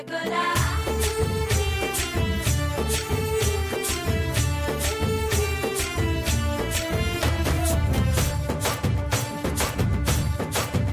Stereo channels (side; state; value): both; identical; correlation 1.00